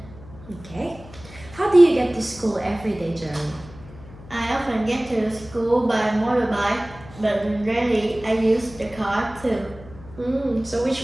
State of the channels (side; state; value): left; noise; hum, 18 dB below the sound